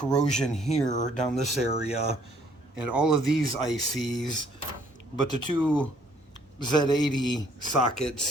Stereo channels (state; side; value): normal; both; correlation 0.63